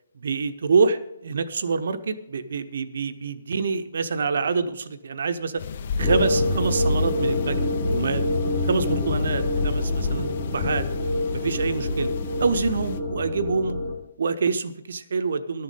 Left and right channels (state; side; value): inverted; both; correlation -0.76